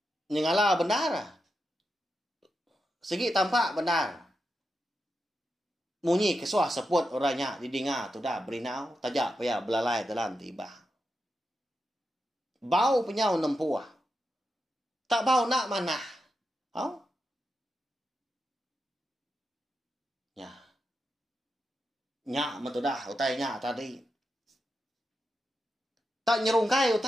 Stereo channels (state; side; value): normal; both; correlation 0.87